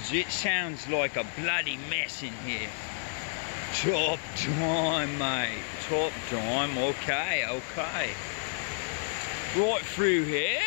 it sounds like a bloody mess in here. Top time, mate. Top time. Okay, okay. Right through here,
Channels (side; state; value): right; silent; digital silence